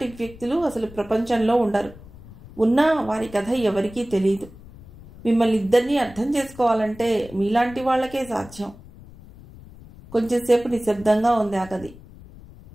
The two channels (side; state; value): left; noise; rumble, 19 dB below the sound